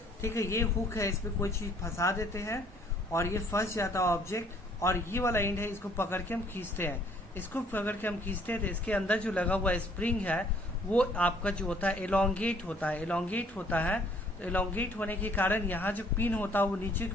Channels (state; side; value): normal; both; correlation 0.61